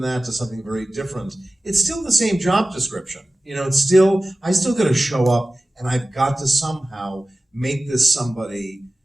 that to something very different, it's still the same job description. I still got to show up, and I've got to somehow make this somebody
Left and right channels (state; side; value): normal; both; correlation 0.97